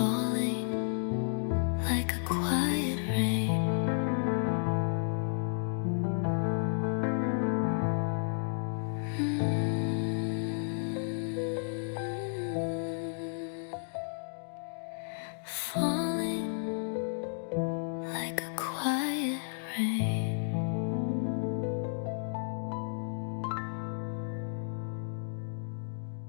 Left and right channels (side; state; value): right; silent; digital silence